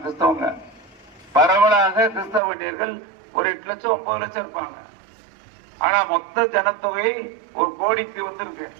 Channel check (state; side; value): drops out; left; at 2.4 s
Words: கிறிஸ்தவங்க. பரவலாக கிறிஸ்தவ வன்னியர்கள் ஒரு 8 லட்சம் 9 லட்சம் இருப்பாங்க. ஆனா மொத்த ஜனத்தொகை 1 கோடிக்கு வந்திருக்கு.